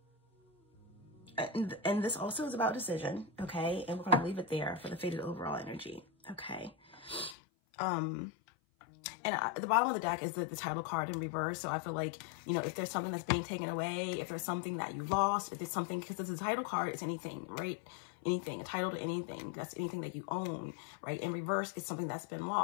and this also is about decision, okay? And we're going to leave it there for the faded overall energy, okay? And at the bottom of the deck is the title card in reverse. So I feel like, you know, if there's something that's being taken away, if there's something that you lost, if there's something, because the title card is anything, right? Anything, a title to anything, that's anything that you own, right? In reverse is something that's been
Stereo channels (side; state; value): right; drops out; at 7.4 s